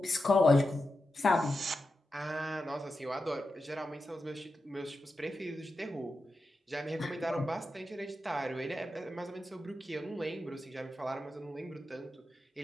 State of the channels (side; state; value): both; normal; correlation 0.90